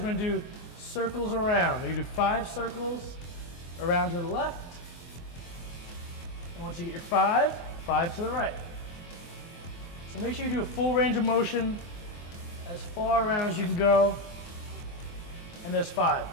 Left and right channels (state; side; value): late; right; 24 ms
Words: going to do circles around. You do 5 circles around to the left. And once you get your 5 to the right. So make sure you do a full range of motion as far around as you can go. And there's 5.